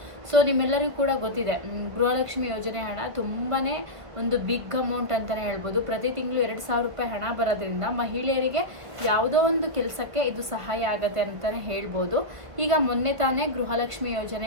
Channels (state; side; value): late; left; 1.7 ms